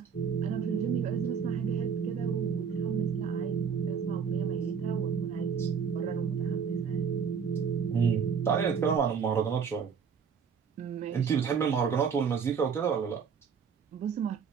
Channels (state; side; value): quieter; left; 6.5 dB